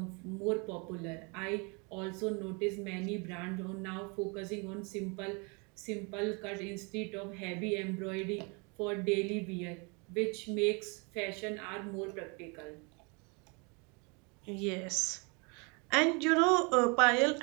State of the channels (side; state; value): left; quieter; 31.9 dB